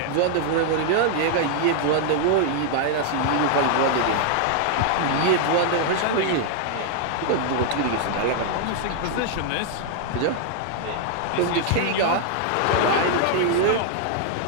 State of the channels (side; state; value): both; different; correlation 0.00